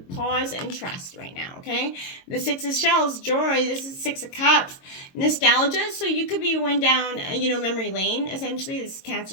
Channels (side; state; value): right; late; 22 ms